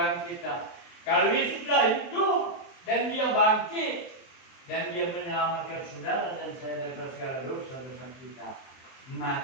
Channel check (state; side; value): late; right; 23 ms